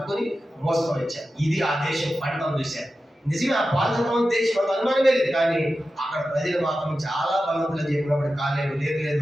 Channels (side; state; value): both; normal; correlation 0.92